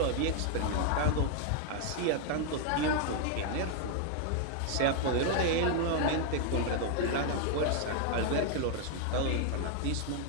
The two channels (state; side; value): different; both; correlation 0.00